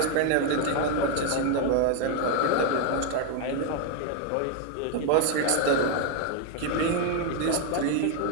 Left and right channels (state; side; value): different; both; correlation 0.01